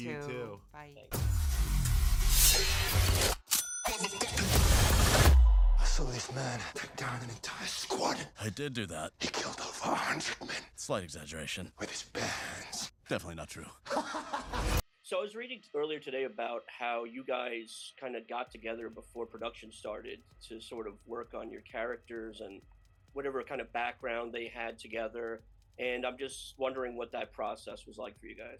too. Bye. I saw this man take down an entire squad. I did do that. He killed over 100 men Slight exaggeration. with his bare hands. Definitely not true. So I was reading earlier today about how you guys kind of got together before production started to sort of work on your characters and whatever kind of background they had together. And I'm just wondering what that process was like for you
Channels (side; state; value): both; identical; correlation 1.00